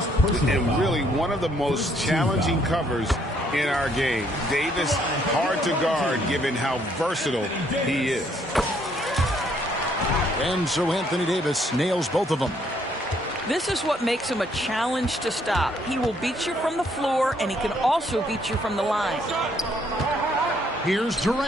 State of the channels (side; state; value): both; normal; correlation 0.68